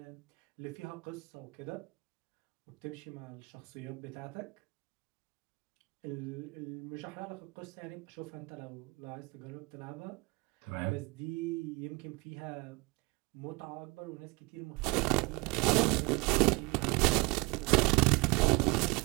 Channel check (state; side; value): quieter; left; 26.3 dB